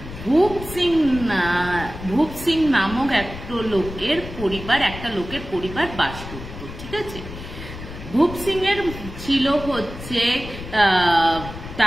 ভূপ সিং নামক একটা লোকের পরিবার বাস করত। ঠিক আছে, ভূপ সিং এর ছিল হচ্ছে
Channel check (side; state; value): left; noise; rumble, 11 dB below the sound